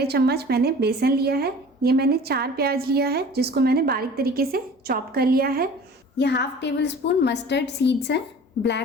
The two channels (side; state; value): both; normal; correlation 0.43